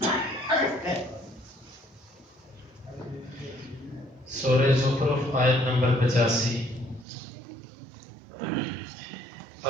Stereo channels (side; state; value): left; drops out; at 7.1 s